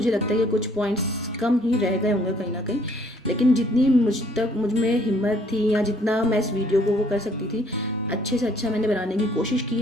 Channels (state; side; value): normal; both; correlation 0.62